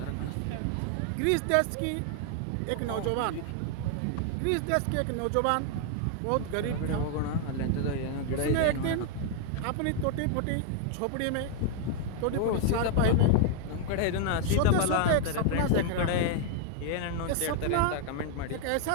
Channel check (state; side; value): different; both; correlation 0.00